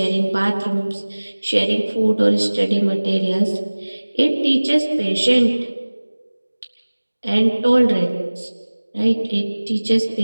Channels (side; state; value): both; inverted; correlation -1.00